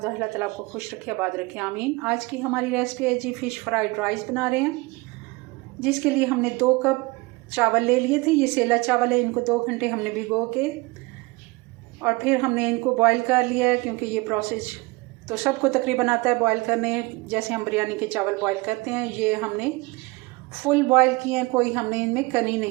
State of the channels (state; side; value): quieter; left; 24.4 dB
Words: अल्लाह ताला आपको खुश रखे, आबाद रखे, आमीन। आज की हमारी रेसिपी है जी फ़िश फ्राइड राइस बना रहे हैं, जिसके लिए हमने 2 कप चावल ले लिए थे। ये सेला चावल है, इनको 2 घंटे हमने भिगो के और फिर हमने इनको बॉईल कर लिया है, क्योंकि ये प्रोसेस तो सबको तकरीबन आता है बॉईल करने, जैसे हम बिरयानी के चावल बॉईल करते हैं। ये हमने फुल बॉईल किए हैं, कोई हमने इनमें कनी